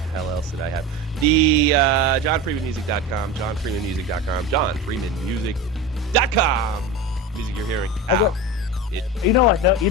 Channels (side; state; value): both; normal; correlation 0.27